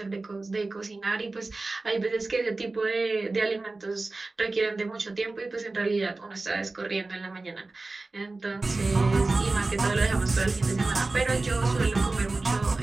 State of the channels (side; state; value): left; quieter; 3.4 dB